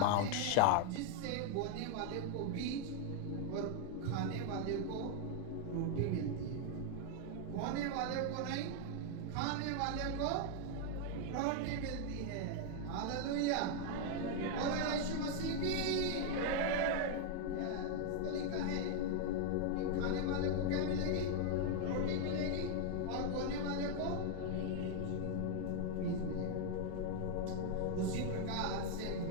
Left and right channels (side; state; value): both; different; correlation 0.00